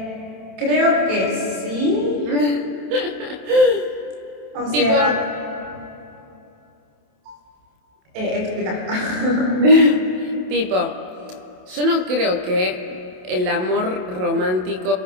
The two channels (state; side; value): late; left; 27 ms